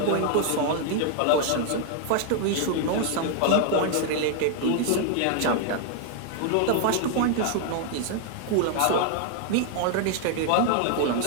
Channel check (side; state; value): both; different; correlation 0.00